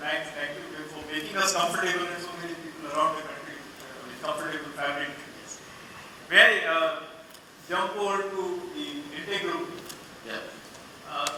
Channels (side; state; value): both; identical; correlation 1.00